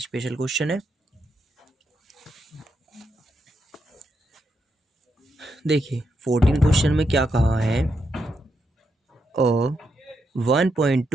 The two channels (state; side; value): normal; both; correlation 0.82